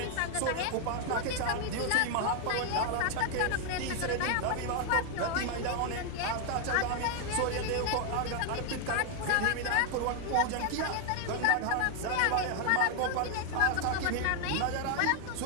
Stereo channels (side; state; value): both; different; correlation 0.00